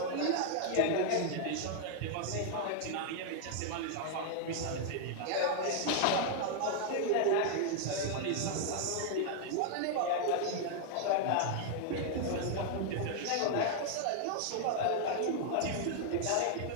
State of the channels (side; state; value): both; different; correlation 0.00